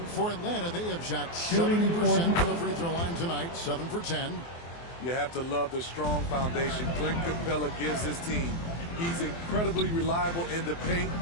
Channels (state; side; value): late; right; 24 ms